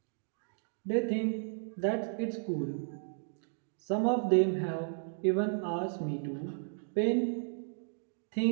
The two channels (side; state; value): left; silent; digital silence